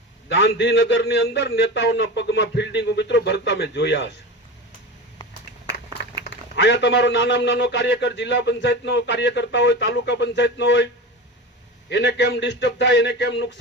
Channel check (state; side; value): normal; both; correlation 0.28